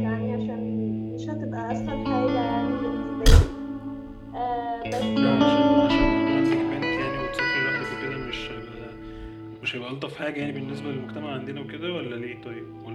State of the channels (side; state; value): both; identical; correlation 1.00